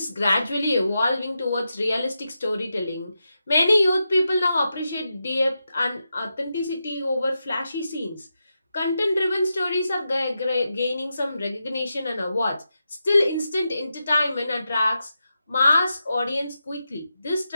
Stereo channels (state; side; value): inverted; both; correlation -0.88